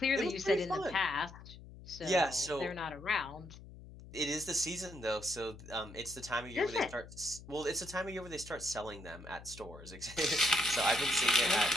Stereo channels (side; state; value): left; noise; hum, 16 dB below the sound